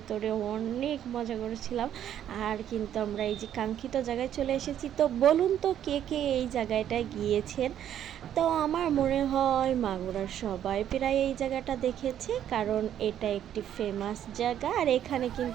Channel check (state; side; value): quieter; left; 10.5 dB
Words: অনেক মজা করেছিলাম। আর কিন্তু আমরা এই যে কাঙ্ক্ষিত জায়গায় চলে এসেছি। তো বলুন তো কে কে এই জায়গাটায় গিয়েছেন? তো আমার মনে হয় মাগুরার সবাই প্রায় এই জায়গাটা দেখেছে, কারণ এটা একটি ফেমাস জায়গা আর এখানে